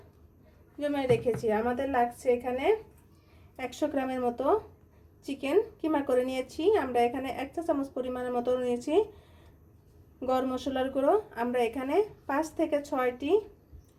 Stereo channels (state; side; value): identical; both; correlation 1.00